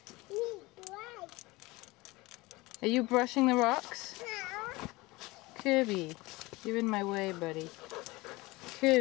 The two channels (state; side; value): quieter; right; 21.9 dB